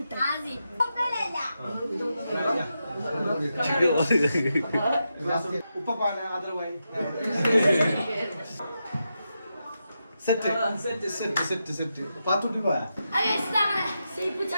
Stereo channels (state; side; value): inverted; both; correlation -0.87